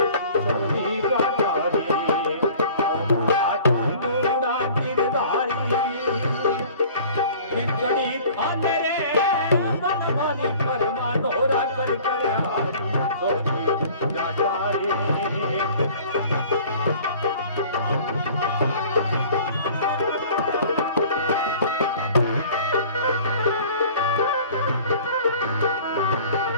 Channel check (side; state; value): both; inverted; correlation -0.48